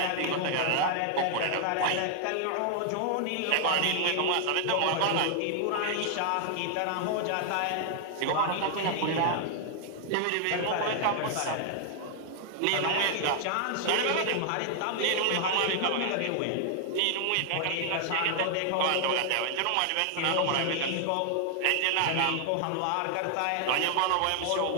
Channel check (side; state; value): both; different; correlation 0.00